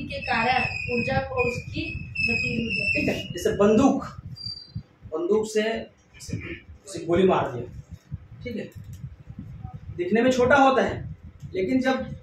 के कारण ऊर्जा को उसकी गतिज ऊर्जा। ठीक है, जैसे बंदूक से उसे गोली मार दिया, ठीक है, दिखने में छोटा होता है, लेकिन जब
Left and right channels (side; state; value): both; identical; correlation 1.00